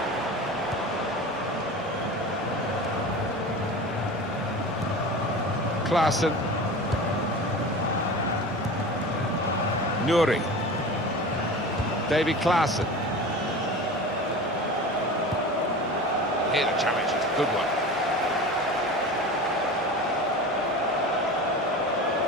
Klaassen. Nuri. Davy Klaassen. Here the challenge is a good one.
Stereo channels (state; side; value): normal; both; correlation 0.33